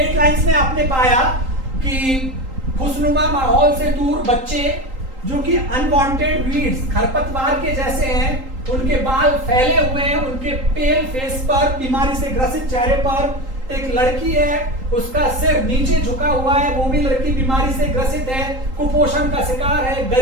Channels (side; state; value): left; late; 3.8 ms